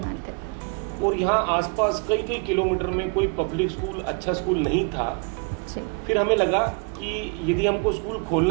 और यहाँ आसपास कई कई किलोमीटर में कोई पब्लिक स्कूल, अच्छा स्कूल नहीं था। फिर हमें लगा कि यदि हमको स्कूल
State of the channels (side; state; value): left; quieter; 32.9 dB